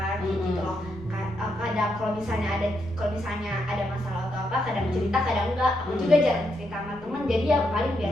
gitu loh. Kadang kalau misalnya ada masalah atau apa, kadang cerita kadang enggak. Aku juga jarang cerita sama temen, jadi ya paling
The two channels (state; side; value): noise; right; rumble, 17 dB below the sound